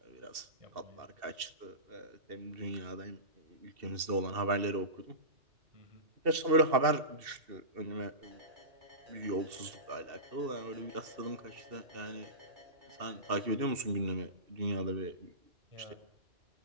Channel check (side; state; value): left; late; 2.7 ms